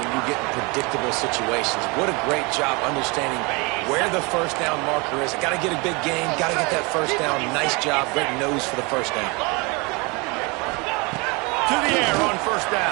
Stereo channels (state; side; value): quieter; left; 28.2 dB